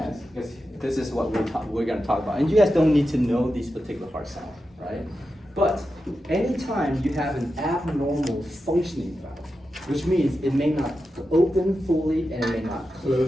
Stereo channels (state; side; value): normal; both; correlation 0.90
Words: because this is what we're gonna talk about. And you guys don't need to know these particular heart sounds, right? But anytime you have an abnormal functioning valve, which means it may not open fully and it may not